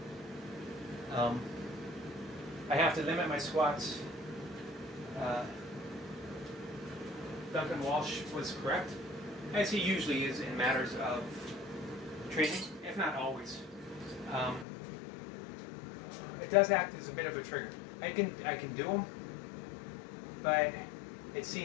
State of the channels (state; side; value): drops out; right; at 14.7 s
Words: I have to limit my squats. Duncan Walsh was correct, as he usually is in matters of training, if not always. It does act as a bit of a trigger. I can do them, but it